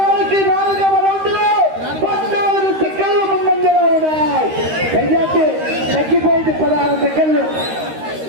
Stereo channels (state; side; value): late; left; 13 ms